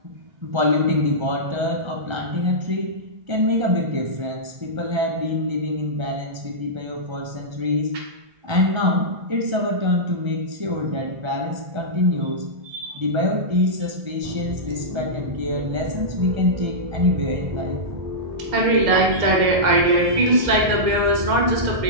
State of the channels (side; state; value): left; late; 1.3 ms